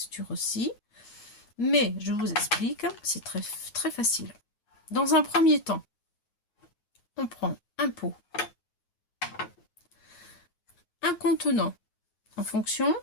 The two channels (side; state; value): right; late; 9.4 ms